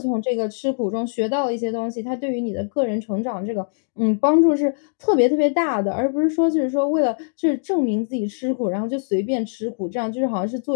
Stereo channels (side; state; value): right; silent; digital silence